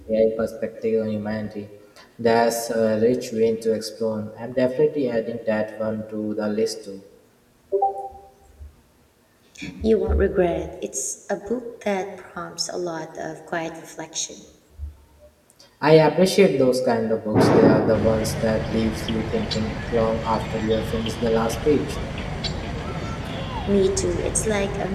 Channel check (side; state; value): both; identical; correlation 1.00